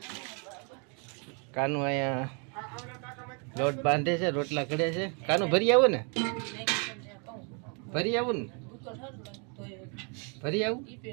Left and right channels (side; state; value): left; quieter; 35.8 dB